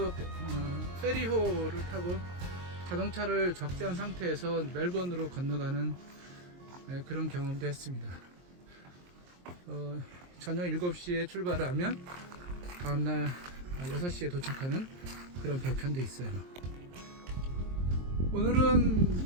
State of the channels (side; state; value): left; late; 23 ms